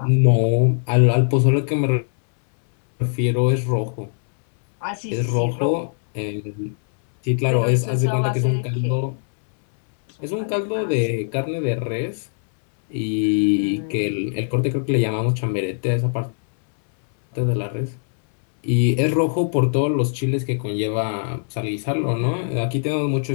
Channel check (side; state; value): right; silent; 65 dB below the other